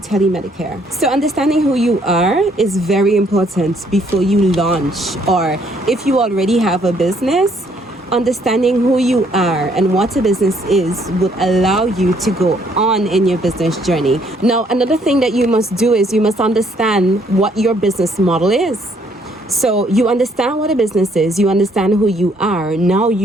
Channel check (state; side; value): normal; both; correlation 0.66